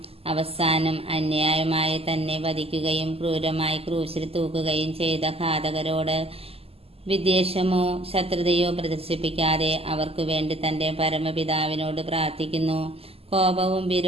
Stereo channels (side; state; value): left; late; 0.29 ms